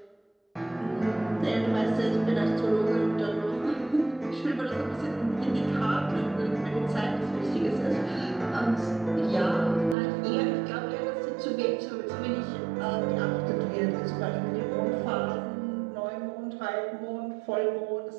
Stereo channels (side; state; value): left; drops out; at 10.0 s